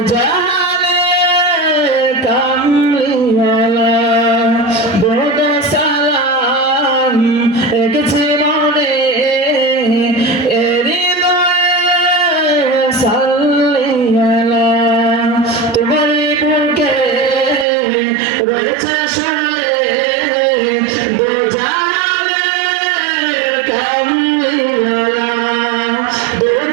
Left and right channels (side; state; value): left; drops out; at 17.7 s